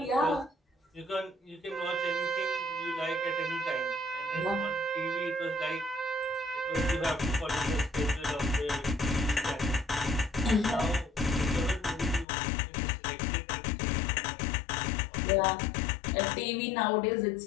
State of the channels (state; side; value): drops out; right; at 12.2 s